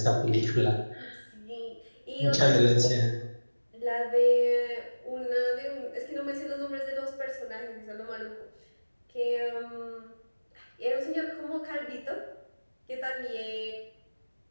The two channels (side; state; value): both; inverted; correlation -1.00